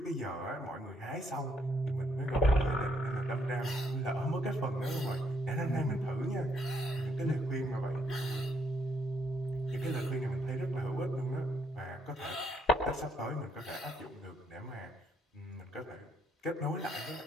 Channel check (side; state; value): both; normal; correlation 0.72